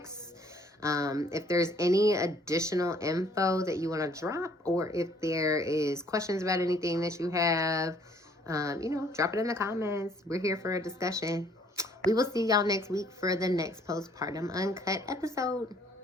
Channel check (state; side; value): normal; both; correlation 0.61